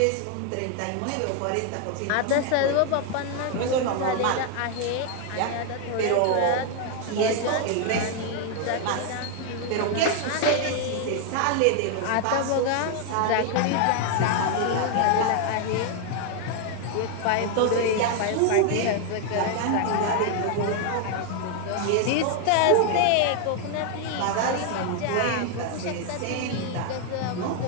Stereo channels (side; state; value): both; different; correlation 0.00